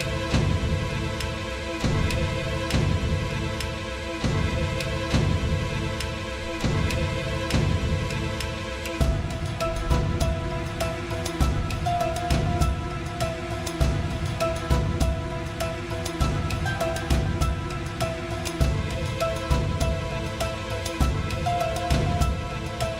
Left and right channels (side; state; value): both; identical; correlation 1.00